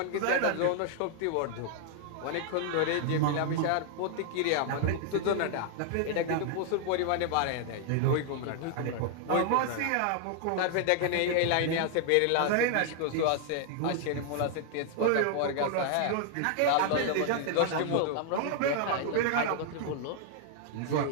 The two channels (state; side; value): different; both; correlation 0.00